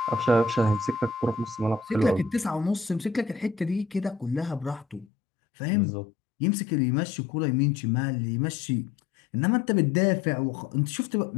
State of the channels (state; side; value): drops out; right; at 5.1 s